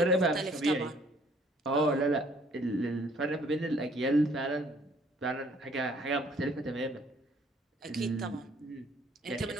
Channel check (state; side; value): normal; both; correlation 0.60